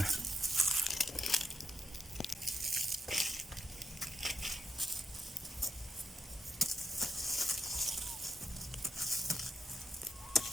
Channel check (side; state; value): both; normal; correlation 0.85